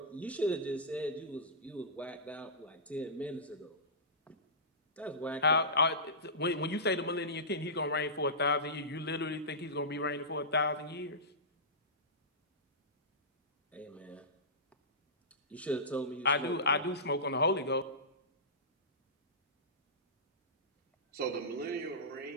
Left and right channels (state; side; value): normal; both; correlation -0.19